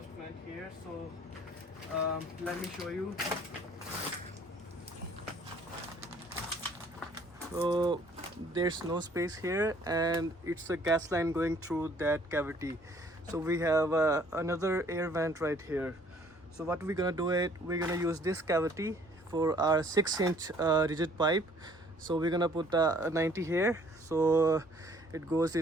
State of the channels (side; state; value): both; normal; correlation 0.58